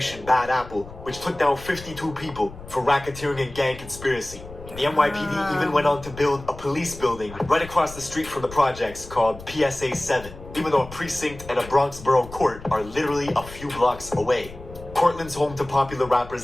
Bad Apple, which took down 52 people for racketeering and gang conspiracy. The NYPD even went on to build a police building right across the street from the projects called PSA 7, even though a precinct and a Bronx borough court are literally a few blocks away. Cortland's home to popular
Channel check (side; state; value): left; noise; rumble, 16 dB below the sound